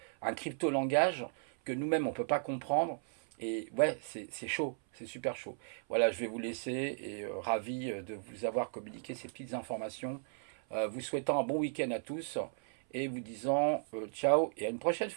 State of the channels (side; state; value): left; silent; 54 dB below the other